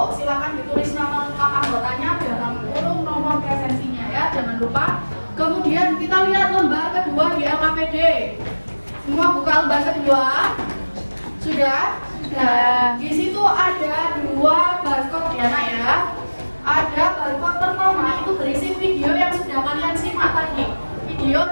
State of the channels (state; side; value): inverted; both; correlation -1.00